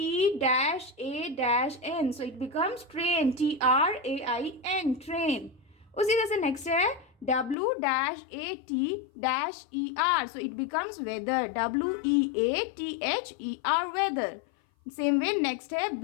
So it becomes train, T-R-A-I-N, train. उसी तरह से नेक्स्ट है, W-A-T-E-R. So it becomes weather. W-E-A-T-H-E-R, weather. Same way, next है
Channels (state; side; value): drops out; right; at 7.6 s